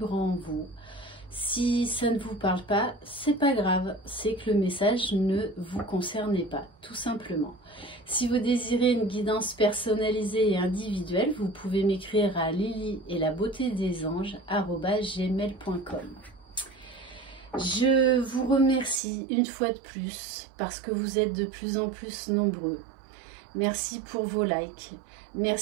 en vous. Si ça ne vous parle pas, c'est pas grave, c'est que le message ne vous concerne pas, tout simplement. Si vous désirez une guidance personnalisée et individuelle, vous pouvez m'écrire à lily-et-la-beauté-des-anges@gmail.com. Je vous remercie une fois de plus parce que vous êtes de plus en plus nombreux. Merci pour vos likes,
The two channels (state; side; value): drops out; left; at 19.0 s